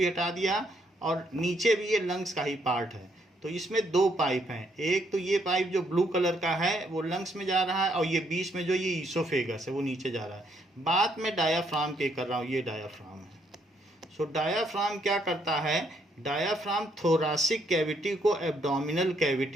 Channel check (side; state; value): both; normal; correlation 0.72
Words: हटा दिया, और नीचे भी ये लंग्स का ही पार्ट है। तो इसमें दो पाइप हैं, एक तो ये पाइप जो ब्लू कलर का है वो लंग्स में जा रहा है, और ये बीच में जो ये ईसोफेगस है वो नीचे जा रहा है। बात मैं डायाफ्राम की कर रहा हूँ, ये डायाफ्राम है। सो डायाफ्राम क्या करता है, डायाफ्राम थोरासिक कैविटी को एब्डोमिनल